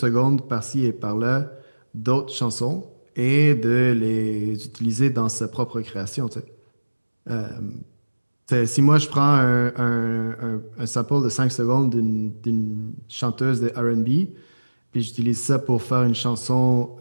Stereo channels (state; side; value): inverted; both; correlation -1.00